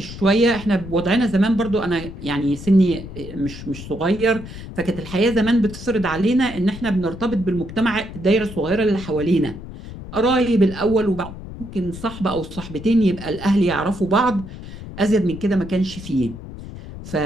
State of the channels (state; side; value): noise; left; rumble, 12 dB below the sound